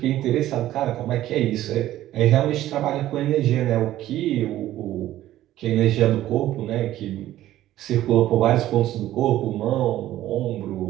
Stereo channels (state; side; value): quieter; left; 13.9 dB